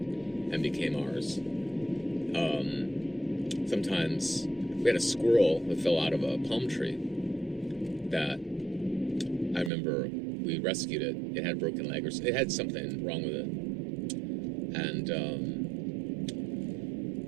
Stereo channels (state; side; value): drops out; left; at 9.7 s